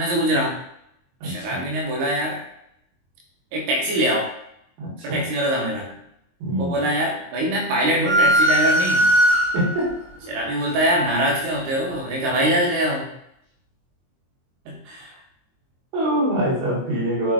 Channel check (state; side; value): late; left; 23 ms